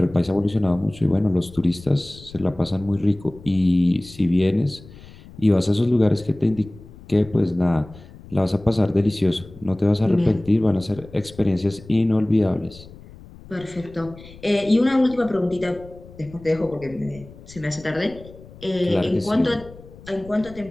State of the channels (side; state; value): left; noise; rumble, 20 dB below the sound